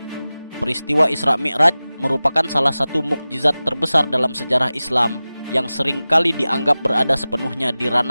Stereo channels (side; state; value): both; inverted; correlation -0.97